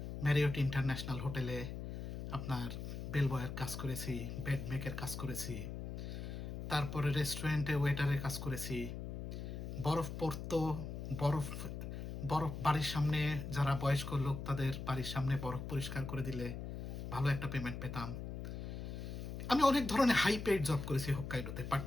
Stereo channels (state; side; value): noise; left; hum, 6 dB below the sound